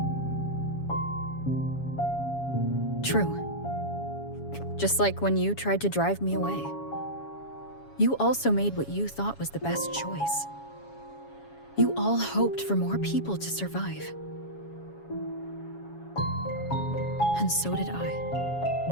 True. Just like when you tried to drive me away. You also made what you thought was the best choice. You all hoped for more people to survive. And so did I.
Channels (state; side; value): late; right; 7.2 ms